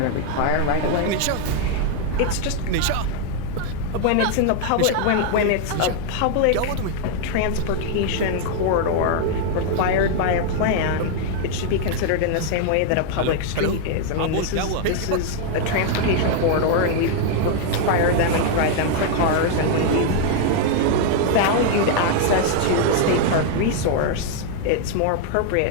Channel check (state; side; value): different; both; correlation 0.00